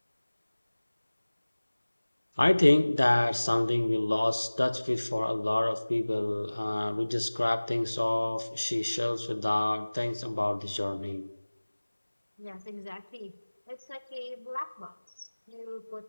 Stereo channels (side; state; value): both; inverted; correlation -1.00